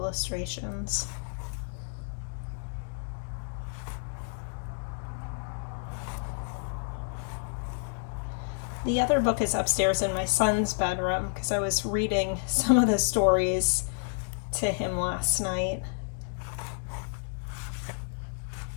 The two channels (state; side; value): silent; right; digital silence